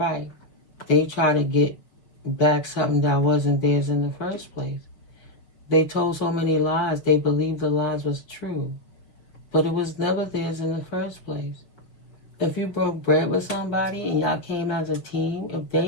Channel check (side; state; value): right; late; 6.3 ms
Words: They try to get back something that wasn't theirs in the first place. They told so many lies, they believed the lies was true. But it was never theirs in the first place. If you broke bread with somebody and y'all came as a team, if